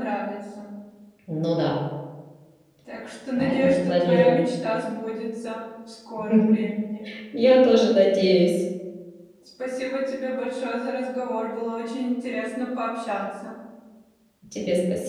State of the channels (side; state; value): both; identical; correlation 1.00